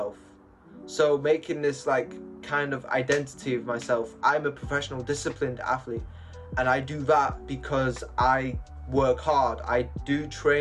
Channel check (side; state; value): both; identical; correlation 1.00